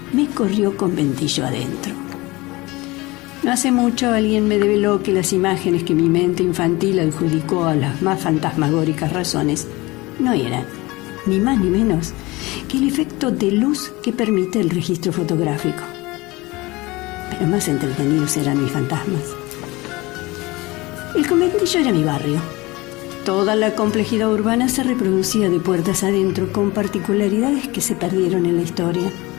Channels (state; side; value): quieter; right; 21.9 dB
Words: me corrió conventillo adentro. No hace mucho alguien me develó que las imágenes que mi mente infantil adjudicó a las más fantasmagóricas razones no eran, ni más ni menos, que el efecto de luz que permite el registro fotográfico. Pero más entretenidos eran mis fantasmas. El conventillo era mi barrio. Toda la complejidad urbana se reproducía de puertas adentro, con particularidades que se perdieron en la historia.